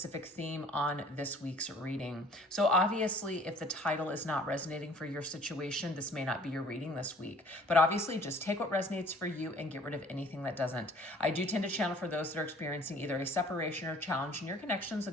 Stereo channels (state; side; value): normal; both; correlation 0.53